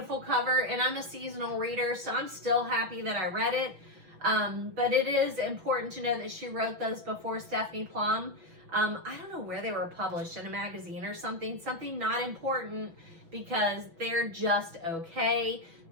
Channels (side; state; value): left; late; 6.0 ms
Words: cover. And I'm a seasonal reader, so I'm still happy that I read it. But it is important to know that she wrote those before Stephanie Plum. I don't know where they were published, in a magazine or something not important, because they're just okay.